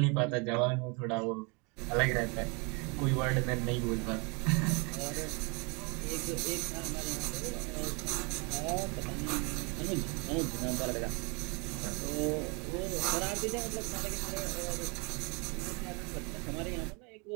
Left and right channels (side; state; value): left; quieter; 31.5 dB